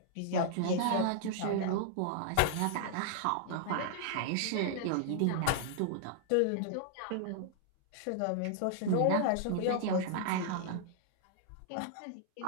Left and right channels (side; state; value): both; different; correlation -0.01